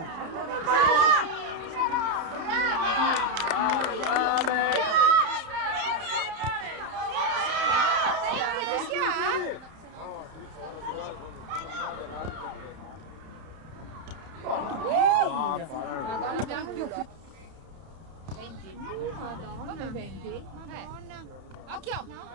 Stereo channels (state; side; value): late; left; 31 ms